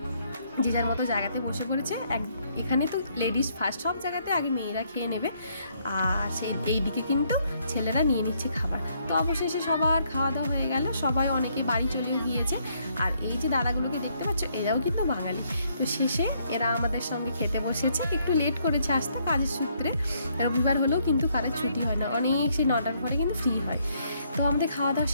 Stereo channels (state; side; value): inverted; both; correlation -0.70